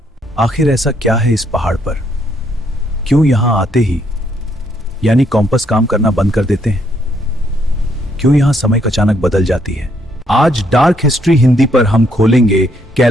आखिर ऐसा क्या है इस पहाड़ पर? क्यों यहां आते ही यानी कॉम्पस काम करना बंद कर देते हैं? क्यों यहां समय अचानक बदल जाती है? आज डार्क हिस्ट्री हिंदी पर हम खोलेंगे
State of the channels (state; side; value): normal; both; correlation 0.72